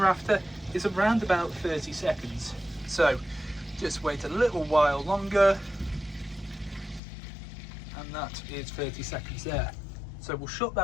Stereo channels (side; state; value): right; drops out; at 7.0 s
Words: after is around about 30 seconds. So just wait a little while longer, and that is 30 seconds there. So we'll shut